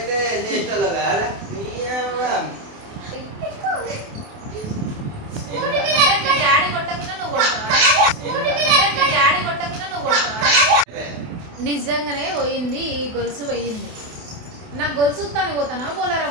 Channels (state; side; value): late; left; 28 ms